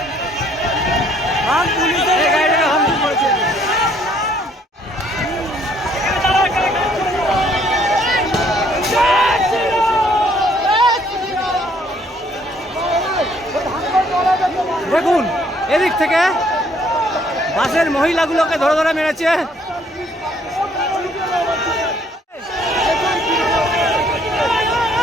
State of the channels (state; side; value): normal; both; correlation 0.64